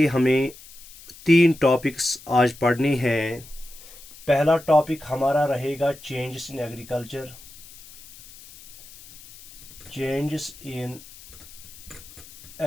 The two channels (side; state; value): left; noise; hiss, 19 dB below the sound